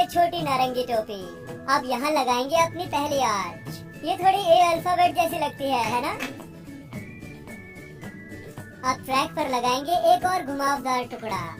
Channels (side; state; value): both; identical; correlation 1.00